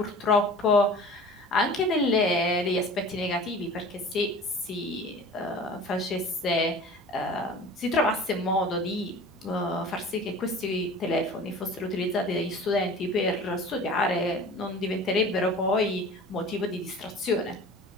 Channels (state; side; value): normal; both; correlation 0.41